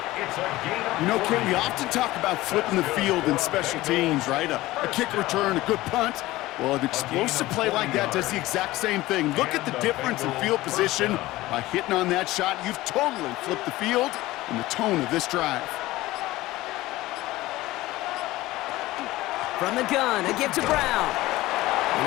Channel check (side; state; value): right; quieter; 17.8 dB